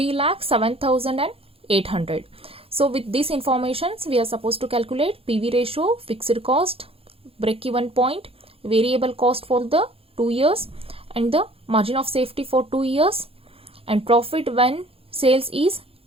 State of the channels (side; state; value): left; late; 0.27 ms